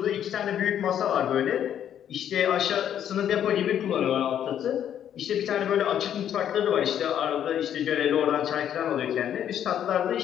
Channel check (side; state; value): right; quieter; 9.9 dB